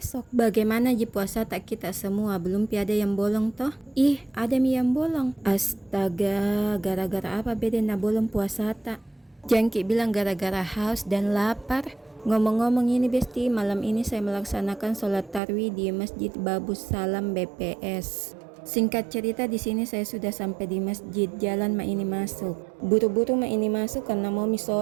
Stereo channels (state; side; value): drops out; left; at 15.4 s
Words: Bagaimana ji puasa tak kita semua, belum ada yang bolong toh? Ih, ada mi yang bolong. Astaga, gara-gara apa beda na bolong puasa tak? Jangki bilang gara-gara haus dan lapar. Ngomong-ngomong ini besti, malam ini saya melaksanakan sholat tarwih di Masjid Babus Salam BPS. Singkat cerita di sini saya sudah sampai di masjid, jalan ma ini masuk. Buru-buru ma ini masuk karena mau mi